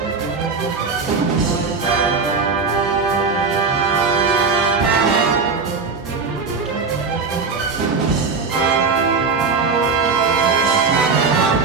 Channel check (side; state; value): left; quieter; 4.7 dB